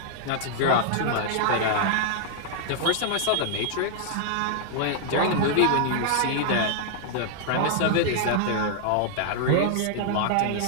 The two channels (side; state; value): both; different; correlation -0.01